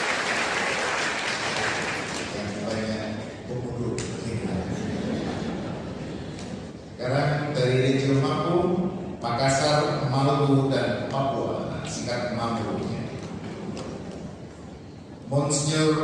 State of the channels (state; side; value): identical; both; correlation 1.00